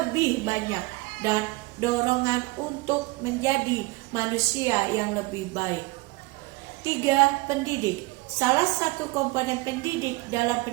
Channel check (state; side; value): quieter; left; 23.5 dB